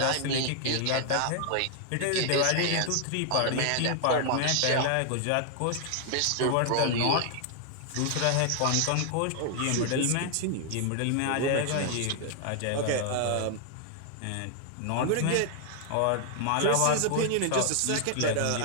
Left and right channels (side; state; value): both; different; correlation 0.00